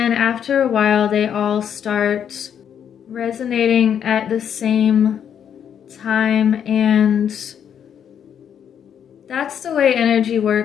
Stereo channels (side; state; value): right; quieter; 8.6 dB